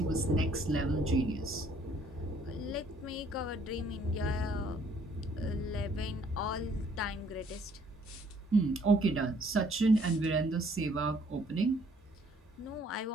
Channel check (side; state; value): both; normal; correlation 0.62